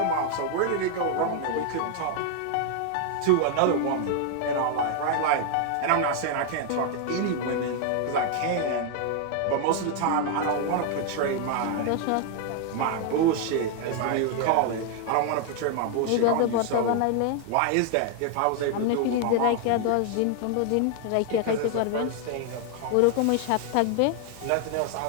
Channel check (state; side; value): different; both; correlation 0.00